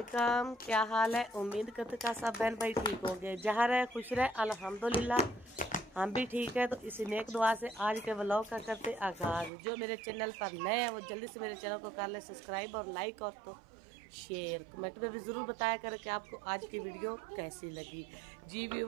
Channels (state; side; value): drops out; left; at 9.5 s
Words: क्या हाल है? उम्मीद करते का सब बहन भाई ठीक हो गए, जहाँ रहे खुश रहे। अल्हम्दुलिल्लाह हम भी ठीक है। तो इसी नेक दुआ से आज के व्लॉग का करते आगाज। जो मेरे चैनल पर नए हैं वो जल्दी से मेरे चैनल को कर ले सब्सक्राइब और लाइक और तो शेयर। कमेंट में भी ज़रूर बताया करें कि आपको आज की वीडियो कैसी लगी। जी